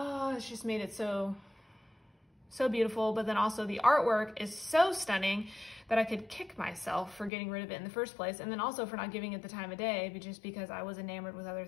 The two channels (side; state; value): right; drops out; at 7.3 s